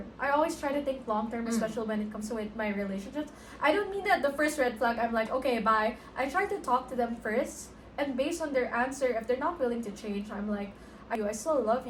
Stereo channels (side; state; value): both; identical; correlation 1.00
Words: I always try to think long term, especially when it comes to with my relationships. I don't mean that the first red flag, I'm like, okay, bye. I try to talk to them first, and based on their answer, if they're not willing to change, I'm like, I still love